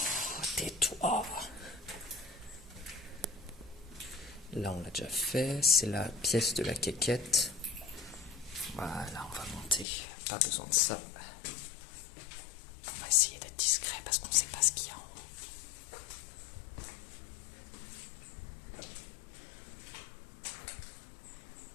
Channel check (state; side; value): drops out; right; at 9.9 s